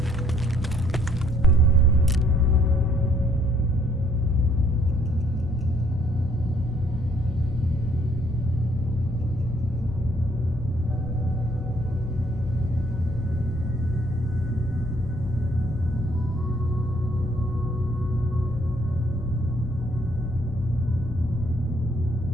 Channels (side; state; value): both; normal; correlation 0.65